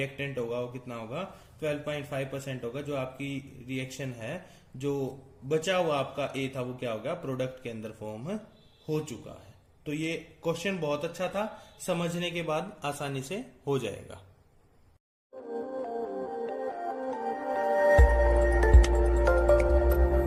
होगा वो कितना होगा, 12.5% होगा। जो आपकी रिएक्शन है, जो बचा हुआ आपका ए था वो क्या होगा, प्रोडक्ट के अंदर फॉर्म हो चुका है। तो ये क्वेश्चन बहुत अच्छा था, समझने के बाद आसानी से हो जाएगा।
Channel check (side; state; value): both; identical; correlation 1.00